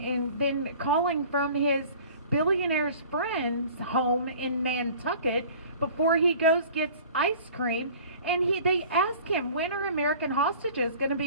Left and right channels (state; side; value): inverted; both; correlation -0.45